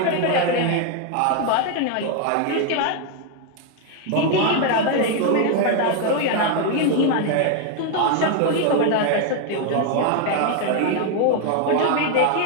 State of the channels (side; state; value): both; different; correlation 0.00